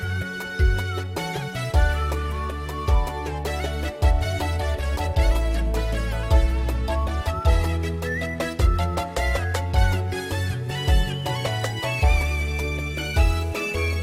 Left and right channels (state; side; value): identical; both; correlation 1.00